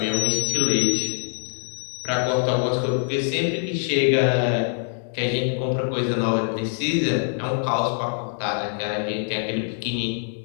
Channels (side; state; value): right; silent; digital silence